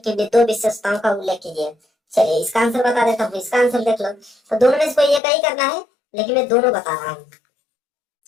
लिए 2 विशेषताओं का उल्लेख कीजिए। चलिए इसका आंसर बता देता हूँ, इसका आंसर देख लो। तो दोनों में से कोई एक ही करना है, लेकिन मैं दोनों बता रहा हूँ।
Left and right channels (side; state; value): right; drops out; at 5.2 s